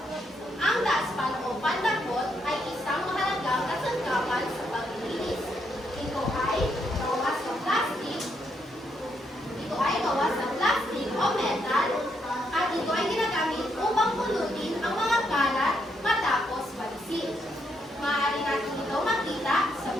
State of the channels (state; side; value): normal; both; correlation 0.77